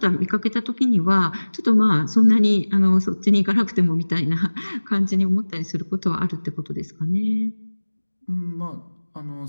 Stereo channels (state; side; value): inverted; both; correlation -1.00